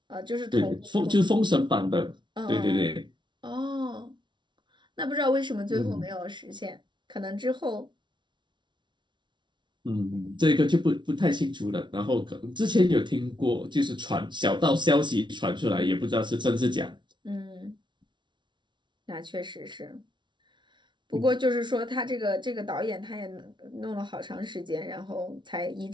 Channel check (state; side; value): late; left; 0.23 ms